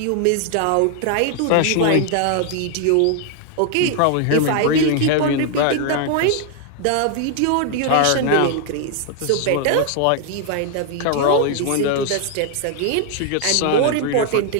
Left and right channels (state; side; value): different; both; correlation 0.00